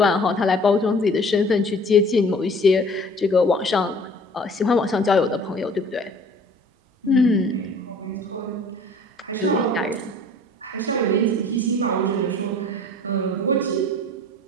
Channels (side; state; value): both; normal; correlation 0.49